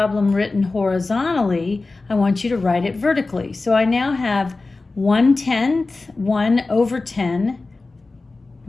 written horizontally, I want you to write it vertically. So I now have 1/10, 1/10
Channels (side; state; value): right; quieter; 3.5 dB